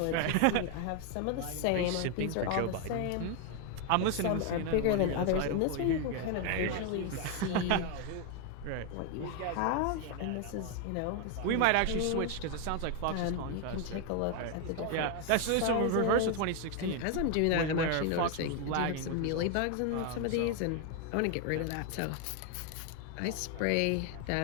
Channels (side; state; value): both; different; correlation 0.01